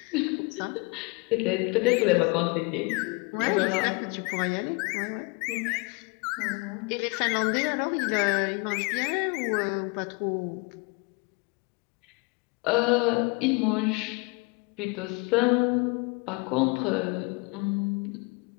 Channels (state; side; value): quieter; right; 29.0 dB